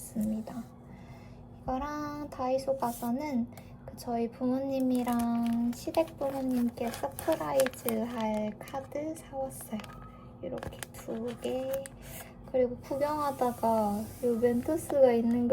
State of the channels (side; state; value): both; identical; correlation 1.00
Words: 이거랑 다이소 가서는 저희 부모님이랑 시댁 부모님께 서프라이즈 할 카드 사왔어요. 이렇게 2개. 그리고 구경하다가 이 멘토스가 있는